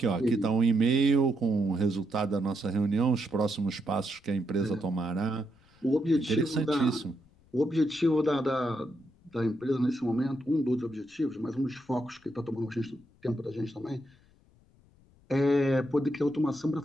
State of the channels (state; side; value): noise; left; rumble, 30 dB below the sound